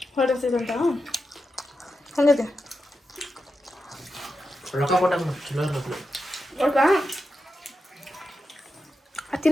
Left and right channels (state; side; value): normal; both; correlation 0.89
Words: ಹೊರಡ್ತಿದಂತ ಹಂಗೈತೆ ರೊಕ್ಕ ಕೊಟ್ಟಾಗ ಚಲೋ ಇರಬೇಕು. ಒಳಗ